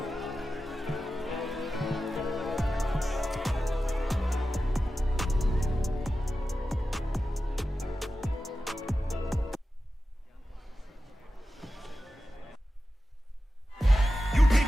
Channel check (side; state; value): both; normal; correlation 0.93